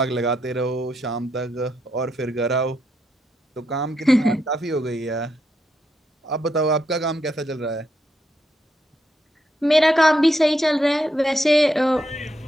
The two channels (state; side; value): normal; both; correlation 0.80